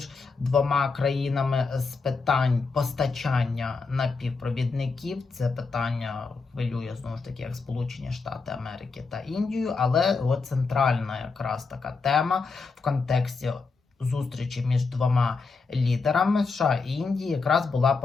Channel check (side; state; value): right; quieter; 4.4 dB